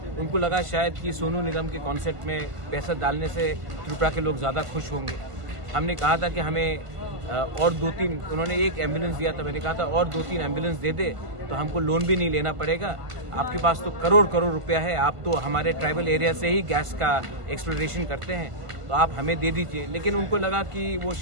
उनको लगा शायद कि सोनू निगम के कॉन्सेप्ट में पैसा डालने से त्रिपुरा के लोग ज़्यादा खुश होंगे। हमने कहा था कि हमें और 2-3, उन्होंने 1 एम्बुलेंस दिया था, मैंने कहा था और 2-3 एम्बुलेंस दे दे तो हमको लोन भी नहीं लेना पड़ेगा। आपके पास तो करोड़ करोड़ रुपया है, आप तो हमारे ट्राइबल एरिया से ही गैस का एक्सप्लोरेशन करते हैं, तो आप हमें दे दीजिए। लेकिन उनको लगा कि वो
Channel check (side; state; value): left; late; 1.5 ms